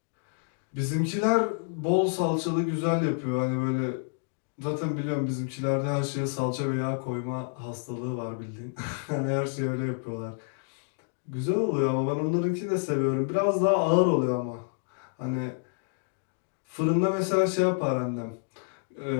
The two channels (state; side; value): silent; right; digital silence